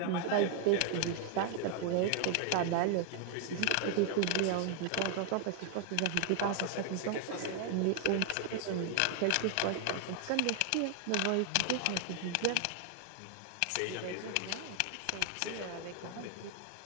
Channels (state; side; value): different; both; correlation 0.00